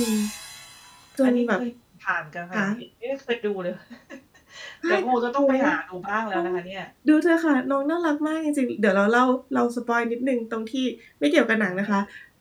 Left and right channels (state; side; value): identical; both; correlation 1.00